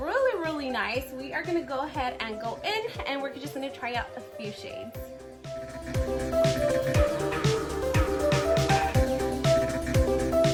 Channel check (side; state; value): both; identical; correlation 1.00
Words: really nice. We are gonna go ahead and go in and we're just gonna try out a few shades.